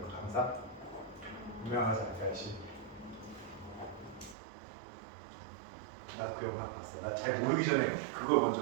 그 강사? 유명하지 않다시. 나 그 영상 봤어. 나 잘 모르기 전에 그걸 먼저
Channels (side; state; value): left; drops out; at 4.4 s